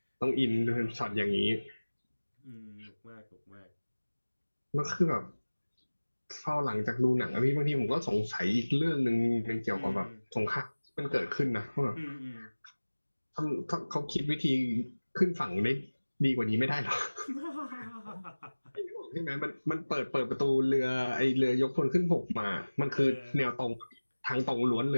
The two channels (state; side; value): inverted; both; correlation -1.00